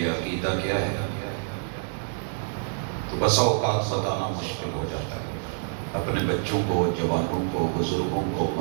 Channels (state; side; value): silent; left; digital silence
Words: عقیدہ کیا ہے تو بسا اوقات بتانا مشکل ہو جاتا ہے۔ اپنے بچوں کو، جوانوں کو، بزرگوں کو،